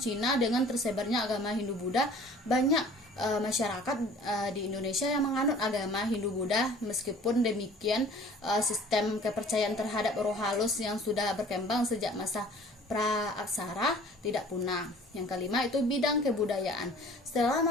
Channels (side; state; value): both; normal; correlation 0.49